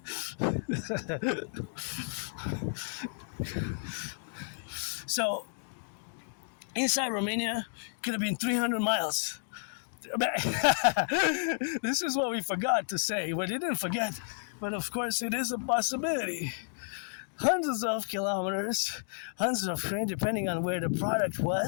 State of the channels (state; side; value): silent; right; digital silence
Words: So inside Romania could have been 300 miles. This is what we forgot to say. We didn't forget, but of course it is a possibility. Hundreds of kilometers, hundreds of trains, depending on where the product